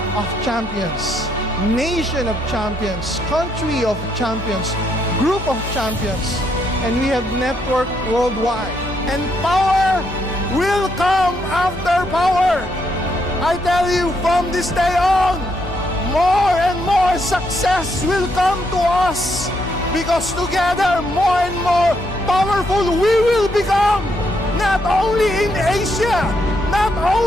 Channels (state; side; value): normal; both; correlation 0.76